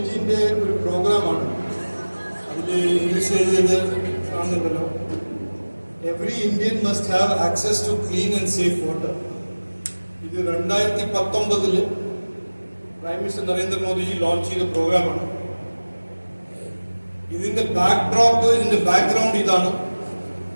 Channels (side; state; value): both; inverted; correlation -1.00